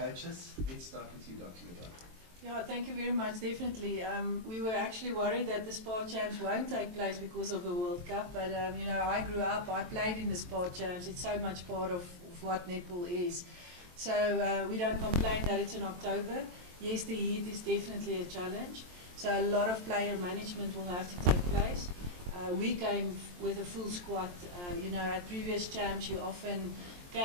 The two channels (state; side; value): late; left; 23 ms